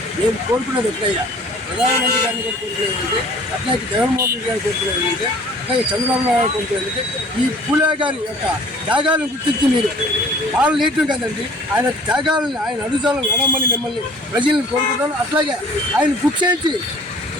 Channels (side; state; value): both; normal; correlation 0.51